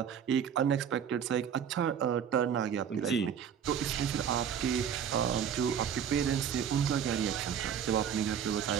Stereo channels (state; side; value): quieter; left; 8.2 dB